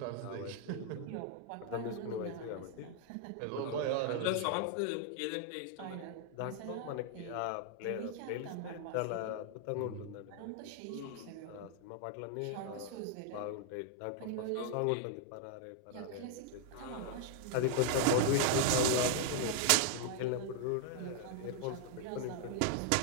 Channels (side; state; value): both; different; correlation 0.00